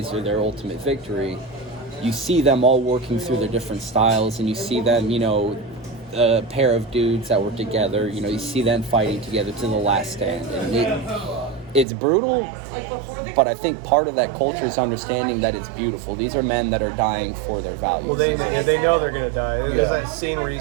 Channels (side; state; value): left; drops out; at 11.9 s